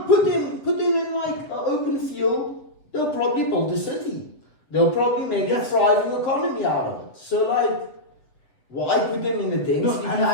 put them in like an open field. They'll probably build a city. They'll probably make a thriving economy out of it. So like, why put them in a dense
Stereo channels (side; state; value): right; late; 7.3 ms